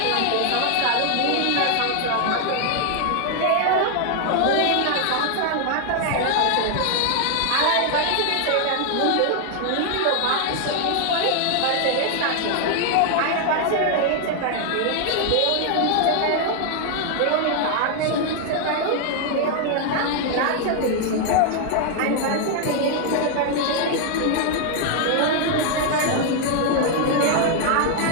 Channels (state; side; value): different; both; correlation 0.00